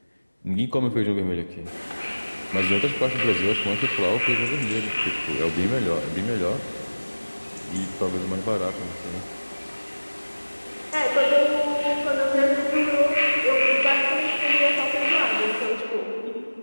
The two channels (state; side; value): inverted; both; correlation -1.00